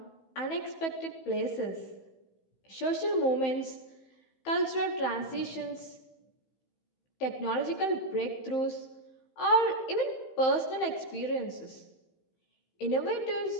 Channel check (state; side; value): late; right; 15 ms